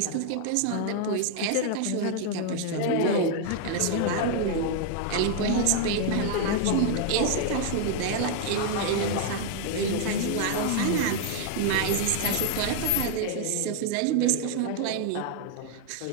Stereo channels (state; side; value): different; both; correlation 0.00